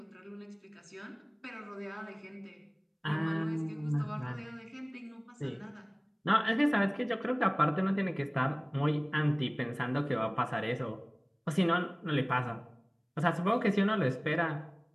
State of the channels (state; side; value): identical; both; correlation 1.00